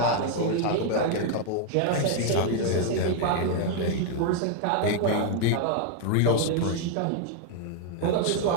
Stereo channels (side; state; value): both; different; correlation 0.00